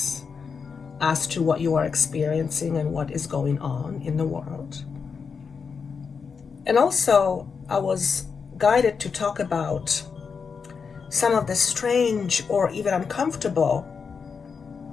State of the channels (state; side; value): quieter; right; 5.7 dB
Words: as to what you are experiencing and what is going on in the world. And also, I was guided to talk about some of the strange or even uncomfortable